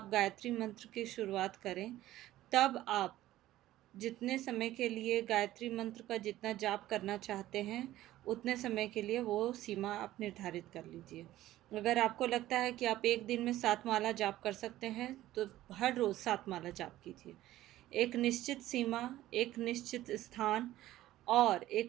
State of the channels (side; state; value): left; quieter; 14.8 dB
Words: गायत्री मंत्र की शुरुआत करें तब आप जितने समय के लिए गायत्री मंत्र का जितना जाप करना चाहते हैं उतने समय के लिए वो सीमा आप निर्धारित कर लीजिए। अगर आपको लगता है कि आप एक दिन में 7 माला जाप कर सकते हैं तो हर रोज़ 7 माला जाप कीजिए। एक निश्चित सीमा, एक निश्चित स्थान और